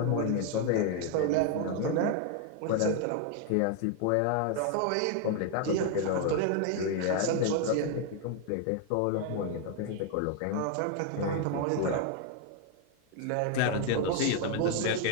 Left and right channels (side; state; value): both; different; correlation 0.00